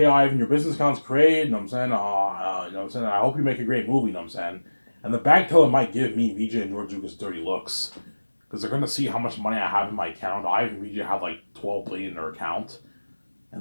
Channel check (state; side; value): inverted; both; correlation -1.00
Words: Ivan, your business account's created, you know what I'm saying? You know what I'm saying? I hope you make a great movie, you know what I'm saying? And the bank teller might give me, VJ, and George Lucas dirty looks. Because they're gonna see how much money I have in my account. Ivan and VJ have like 12 billion in their account.